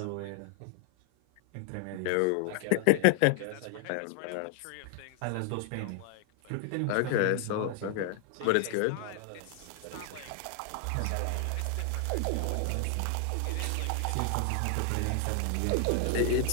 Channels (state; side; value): different; both; correlation 0.00